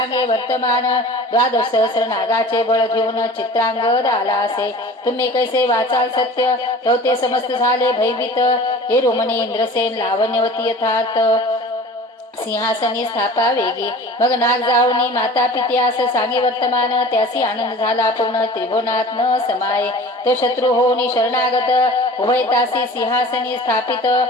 वर्तमान 12 सहस्र नागाचे बळ घेऊन चित्रांगद आला असे. तुम्ही कैसे वाचाल सत्य तो ते समस्त झाले भयभीत. हे रोमणी इंद्रसेन लावण्यवती यथार्थ सिंहासनी स्थापा वेगी. मग नाग जाऊनी माता पित्यास सांगे वर्तमान त्यासी आनंद झाला पूर्ण त्रिभुवनात न समाये. तो शत्रू होऊनी शरणागत उभयतासी सिंहासनी स्थापित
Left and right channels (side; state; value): both; normal; correlation 0.41